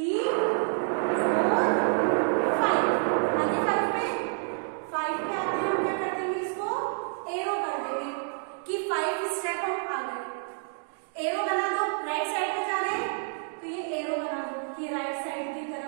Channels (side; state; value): left; silent; digital silence